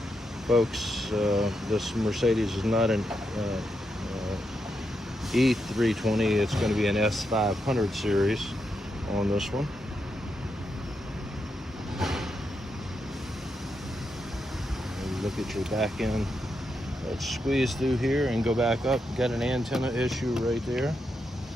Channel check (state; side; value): normal; both; correlation 0.83